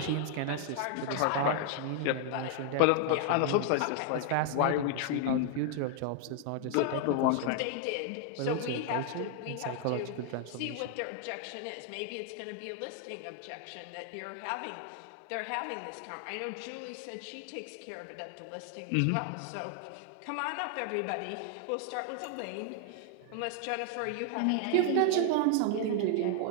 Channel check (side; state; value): both; different; correlation 0.00